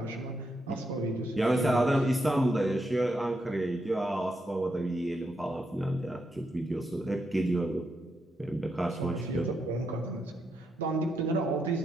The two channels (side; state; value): both; normal; correlation 0.81